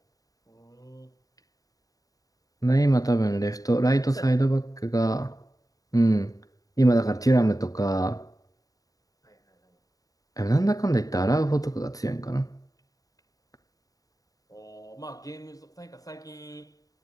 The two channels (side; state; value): right; late; 0.18 ms